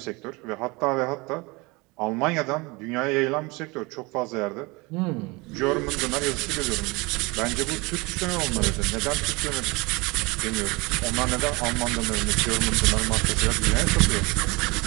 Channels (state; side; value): quieter; left; 25.5 dB